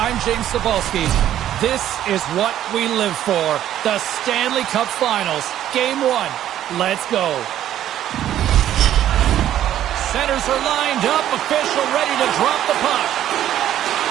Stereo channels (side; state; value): left; quieter; 11.8 dB